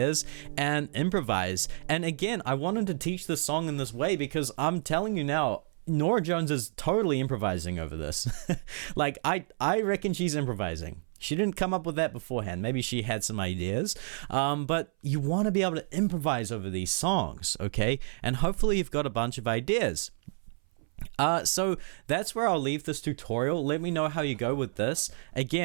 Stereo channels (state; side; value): silent; left; 58 dB below the other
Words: and improvise. And again, I wanted to teach this song in this way because I'm telling you now, Norah Jones is totally improvising over this. Like, I reckon she's improvising. She didn't come up with that beforehand. Maybe she had some ideas, but you want to be able to improvise over these songs, okay? And hopefully you've got a bunch of ideas. So that's where I'll leave this tutorial. Let me know how you go with this.